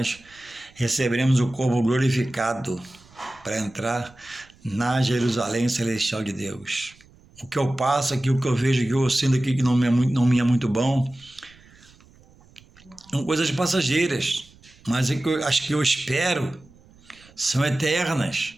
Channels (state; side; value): noise; right; rumble, 27 dB below the sound